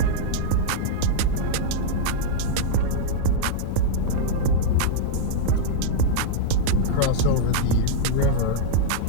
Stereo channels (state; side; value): different; both; correlation -0.02